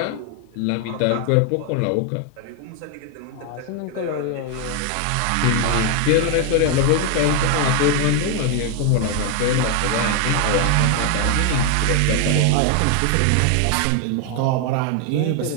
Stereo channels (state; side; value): different; both; correlation 0.00